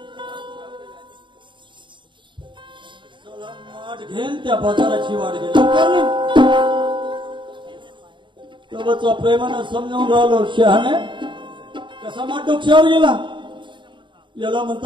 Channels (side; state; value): left; late; 0.23 ms